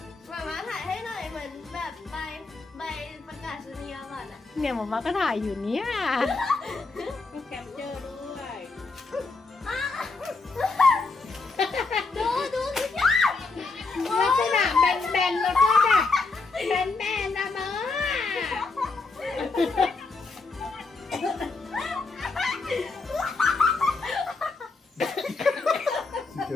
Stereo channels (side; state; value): right; quieter; 3.9 dB